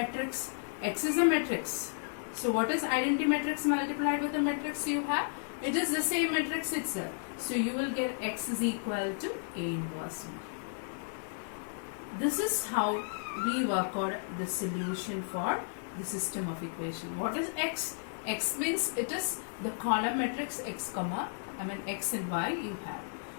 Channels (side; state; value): right; silent; 56 dB below the other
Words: X is a matrix. So what is identity matrix multiplied with the matrix you have? It is the same matrix itself. So you will get X is equal to A inverse B. This is how we work out the solution for the system of equation. What is X? X means it is the column matrix X and Y you have.